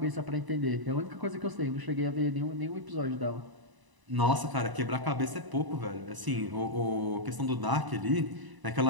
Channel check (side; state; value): left; late; 1.0 ms